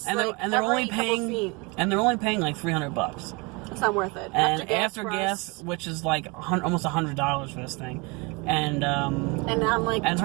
And they're only paying like $300. It's not worth it. And after gas, which is like almost $100 for this thing. And I'm like and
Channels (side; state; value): left; quieter; 28.0 dB